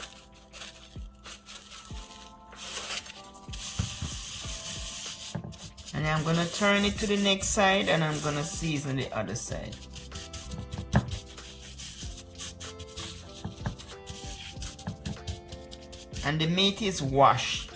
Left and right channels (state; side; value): identical; both; correlation 1.00